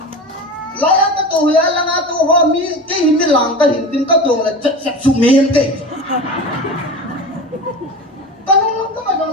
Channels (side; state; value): both; normal; correlation 0.30